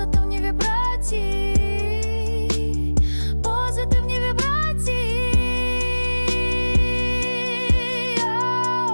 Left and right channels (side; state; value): both; inverted; correlation -1.00